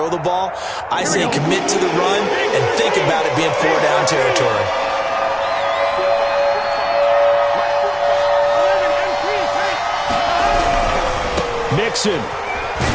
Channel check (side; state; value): both; identical; correlation 1.00